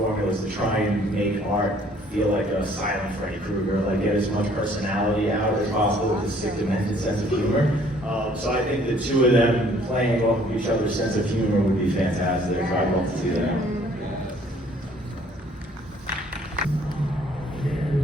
is to try and make art feel like a silent Freddy Krueger, like get as much personality out as possible with a sick, demented sense of humor. So I think the two of them playing off of each other's sense of humor would be fantastic. I'd love to see that.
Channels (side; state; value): both; normal; correlation 0.59